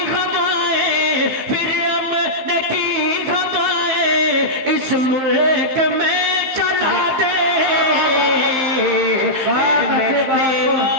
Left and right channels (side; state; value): left; late; 15 ms